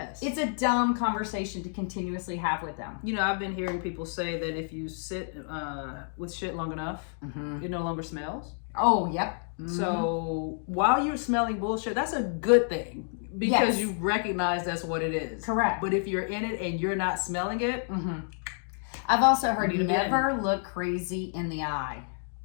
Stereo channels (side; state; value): right; silent; 58 dB below the other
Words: It's a dumb conversation to continuously have with them. You know, I've been hearing people say that if you sit with shit long enough, it no longer smells. Oh, yep. So while you're smelling bullshit, that's a good thing because Yes. you recognize that's what it is. Correct. But if you're in it and you're not smelling it, I've also heard You need a never look crazy in the eye.